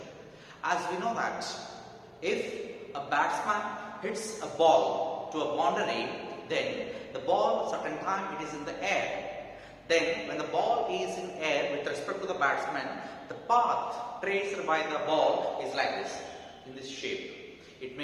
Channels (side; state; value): both; identical; correlation 1.00